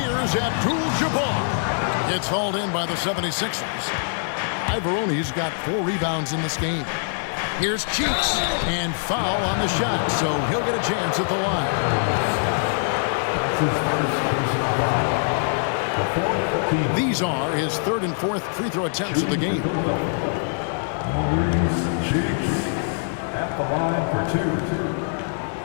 Abdul-Jabbar. It's hauled in by the 76ers. Ivoroni's got 4 rebounds in this game. Here's Cheeks, and foul on the shot, so he'll get a chance at the line. That's his first personal foul. The 4th team. These are his 3rd and 4th free throw attempts of the game. Maurice Cheeks at the line for 2.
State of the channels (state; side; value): silent; right; digital silence